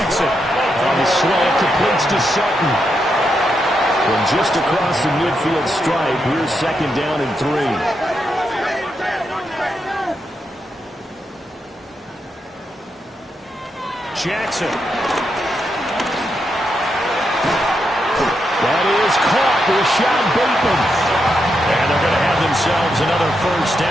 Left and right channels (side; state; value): both; normal; correlation 0.83